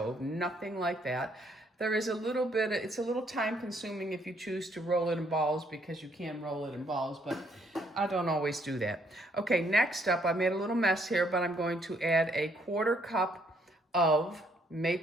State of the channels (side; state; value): both; normal; correlation 0.69